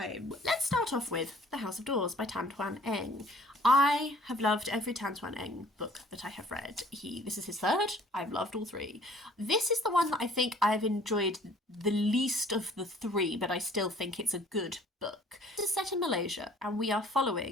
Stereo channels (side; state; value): both; normal; correlation 0.54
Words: Let's start off with The House of Doors by Twan. I have loved every Twan book that I have read. This is his third. I've loved all three. This is the one that I think I've enjoyed the least of the three, but I still think it's a good book. This is set in Malaysia, and we are